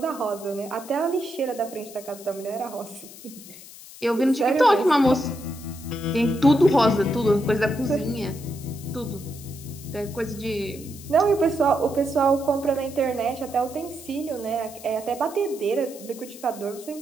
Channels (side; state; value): left; noise; hiss, 17 dB below the sound